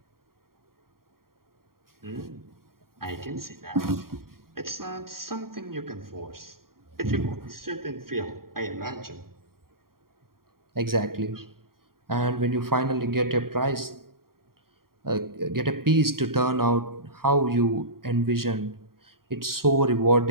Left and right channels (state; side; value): late; left; 0.93 ms